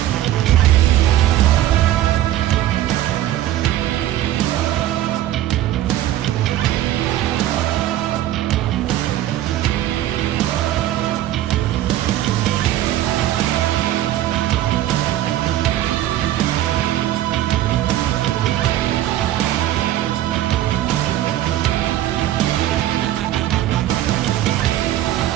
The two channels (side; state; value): left; quieter; 13.2 dB